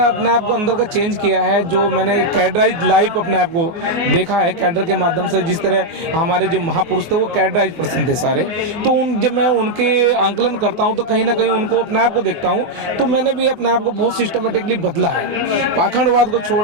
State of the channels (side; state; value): left; late; 24 ms